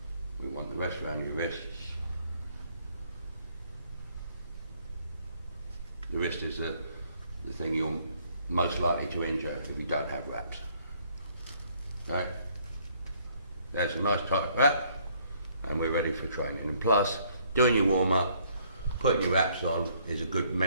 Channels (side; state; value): both; inverted; correlation -0.65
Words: We want the rest around your wrists. The wrist is the thing you're most likely to injure if you don't have wraps. Okay? There's a nice tight wrap, and we're ready for training. And plus, doing your warm-up, putting your wraps on is a good